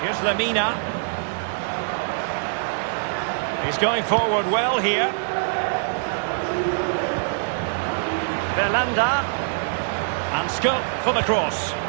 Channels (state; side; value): silent; left; digital silence